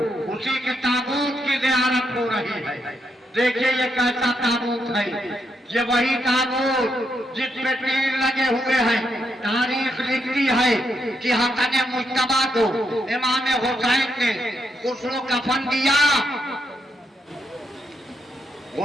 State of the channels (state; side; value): normal; both; correlation 0.80